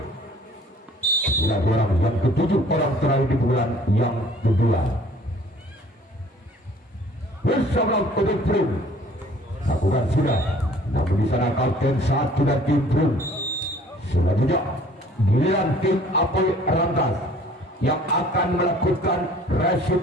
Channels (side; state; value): both; normal; correlation 0.54